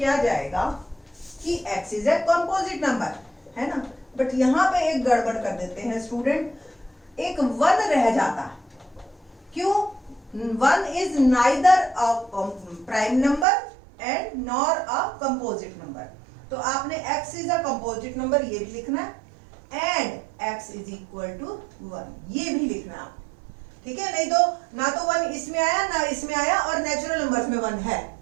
जाएगा कि x is a composite number, है ना, बट यहां पे एक गड़बड़ कर देते हैं स्टूडेंट, एक 1 रह जाता है। क्यों? 1 is neither a prime number and nor a composite number, तो आपने x is a composite number ये भी लिखना है and x is equal to 1 ये भी लिखना है, ठीक है, नहीं तो ना तो 1 इसमें आया ना इसमें आया और नेचुरल नंबर्स में 1 है,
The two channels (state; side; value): drops out; left; at 13.5 s